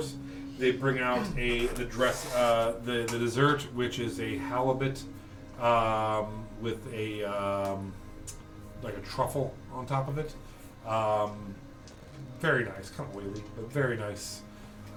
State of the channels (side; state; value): both; identical; correlation 1.00